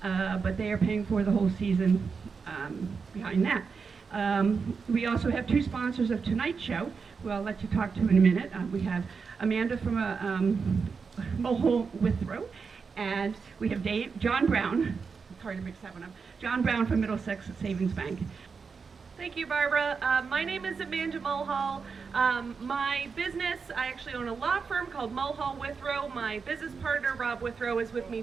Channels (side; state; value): left; quieter; 5.3 dB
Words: but they are paying for the whole season behind that. We also have two sponsors of tonight's show, who I'll let you talk to in a minute. We have Amanda from Mulhall Withrow, and we have John Brown. It's hard to mix that one up. John Brown from Middlesex Savings Bank. Thank you, Barbara. My name is Amanda Mulhall. My business, I actually own a law firm called Mulhall Withrow. My business partner, Rob Withrow, is with me